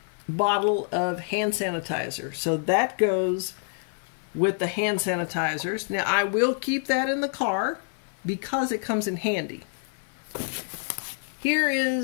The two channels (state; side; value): silent; right; 60 dB below the other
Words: bottle of hand sanitizer. So that goes with the hand sanitizers. Now, I will keep that in the car because it comes in handy. Here